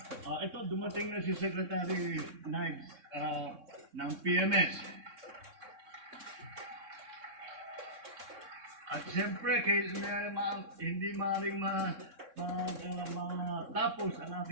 ito, dumating na si Secretary Knives ng PMS. At siyempre, hindi maaaring matapos ang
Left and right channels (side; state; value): left; late; 3.6 ms